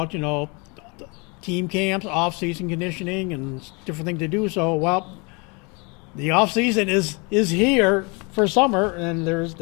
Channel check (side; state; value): right; quieter; 30.2 dB